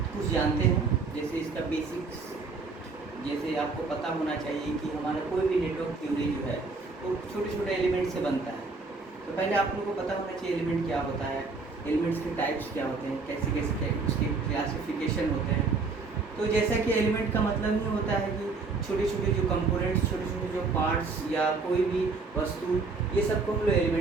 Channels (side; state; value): left; quieter; 4.2 dB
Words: कुछ जानते हैं, जैसे इसका बेसिक्स। जैसे आपको पता होना चाहिए कि हमारा कोई भी नेटवर्क थ्योरी जो है वो छोटे छोटे एलिमेंट से बनता है। तो पहले आप लोगों को पता होना चाहिए एलिमेंट क्या होता है, एलिमेंट्स के टाइप्स क्या होते हैं, कैसे कैसे उसके क्लासिफिकेशन होते हैं। तो जैसा कि एलिमेंट का मतलब ही होता है कि छोटे छोटे जो कंपोनेंट्स, छोटे छोटे जो पार्ट्स या कोई भी वस्तु, ये सबको हम लोग